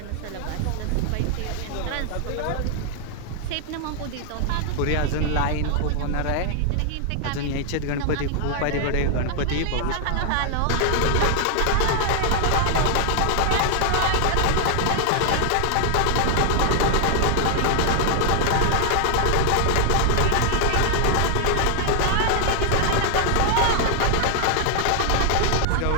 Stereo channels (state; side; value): different; both; correlation 0.00